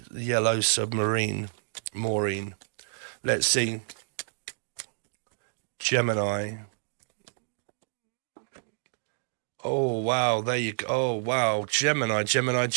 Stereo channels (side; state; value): left; silent; digital silence